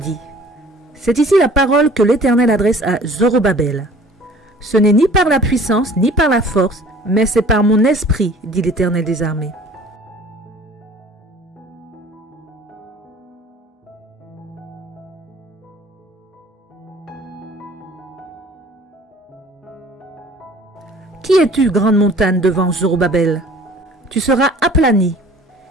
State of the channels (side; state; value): both; normal; correlation 0.50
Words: « C'est ici la parole que l'Éternel adresse à Zorobabel. Ce n'est ni par la puissance, ni par la force, mais c'est par mon esprit, dit l'Éternel des armées. » Qui es-tu, grande montagne, devant Zorobabel? Tu seras aplani.